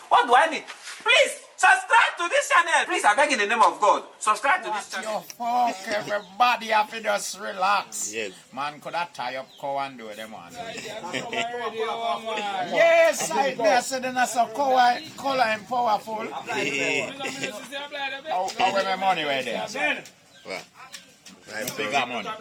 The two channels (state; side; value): identical; both; correlation 1.00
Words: what do I need? Please, subscribe to this channel. Please, I beg in the name of God, subscribe to this channel. Yo, fuck, everybody have to just relax. Yes. Man could have tie up cow and do them on. Yes, I said that's so color and powerful. How my money right there? Sir? Well, Big money.